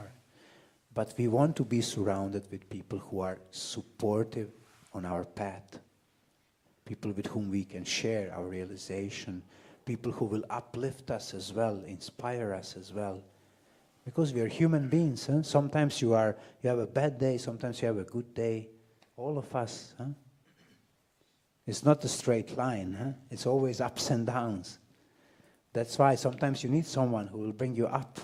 But we want to be surrounded with people who are supportive on our path. People with whom we can share our realization. People who will uplift us as well, inspire us as well. Because we are human beings. Huh? Sometimes you have a bad day, sometimes you have a good day. All of us. Huh? It's not a straight line. Huh? It's always ups and downs. That's why sometimes you need someone who will bring you up.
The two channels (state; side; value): identical; both; correlation 1.00